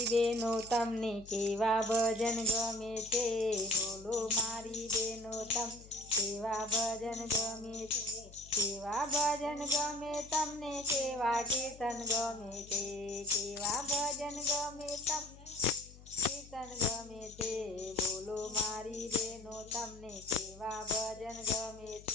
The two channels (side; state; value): left; noise; hum, 19 dB below the sound